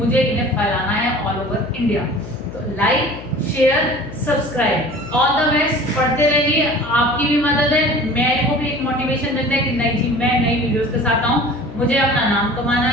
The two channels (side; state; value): left; noise; hum, 13 dB below the sound